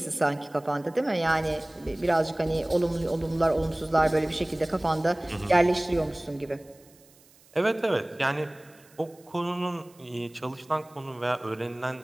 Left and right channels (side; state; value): right; noise; hiss, 28 dB below the sound